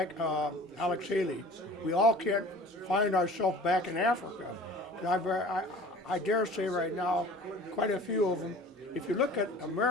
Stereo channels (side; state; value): both; normal; correlation 0.44